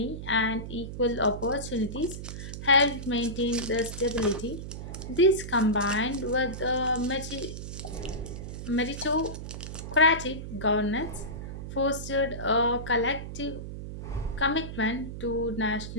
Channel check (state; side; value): noise; right; hum, 8 dB below the sound